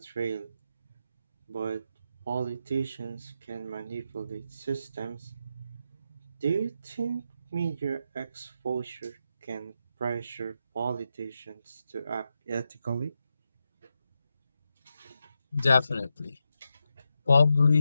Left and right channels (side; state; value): both; inverted; correlation -0.87